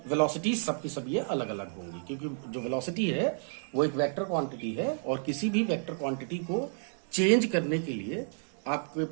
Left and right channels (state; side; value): silent; left; 57 dB below the other